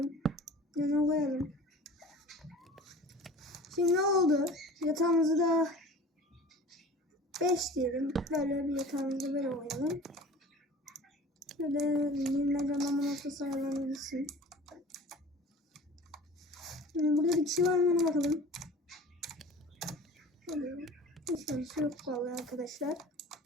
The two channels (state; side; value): normal; both; correlation 0.42